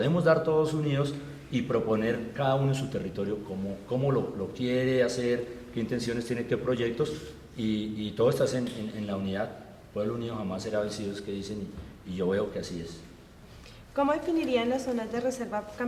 dar todos unidos y proponer cada uno en su territorio cómo lo quiere hacer, qué intenciones tiene, qué proyectos, y todo está en la unidad. Pueblo unido jamás será vencido, es que dicen, y yo veo que así es. ¿Cómo definirían las zonas de reserva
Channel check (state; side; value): identical; both; correlation 1.00